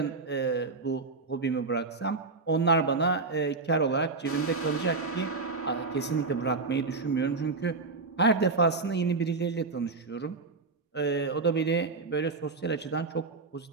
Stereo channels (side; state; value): left; quieter; 4.0 dB